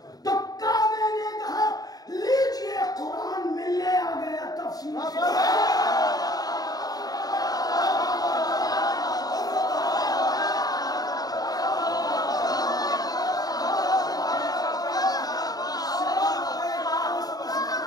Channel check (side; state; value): right; late; 0.18 ms